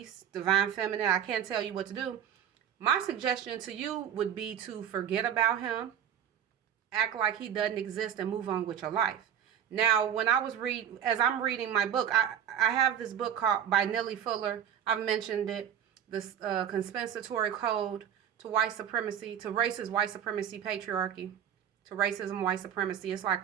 divine feminine, I can't tell you what to do. My suggestion to you would be to forget about him, act like he doesn't exist, and move on with your life. Now, when as I'm reading my book, I have this book by Nellie Fuller. I've mentioned it, this Compensatory Code to White Supremacy, to Racist White Supremacy Patriarchy, to Racism White Supremacy. It's like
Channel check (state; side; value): quieter; left; 9.2 dB